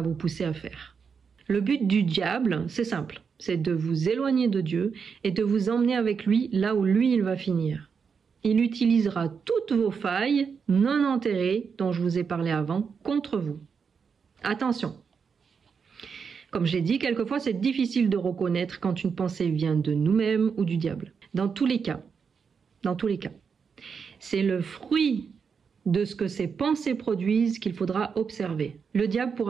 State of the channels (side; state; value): left; quieter; 6.1 dB